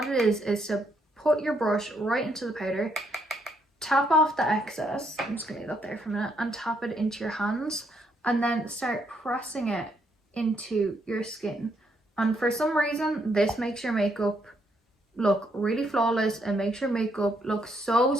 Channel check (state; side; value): normal; both; correlation 0.74